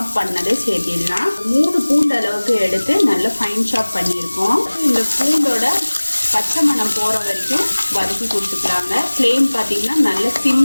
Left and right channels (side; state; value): both; inverted; correlation -1.00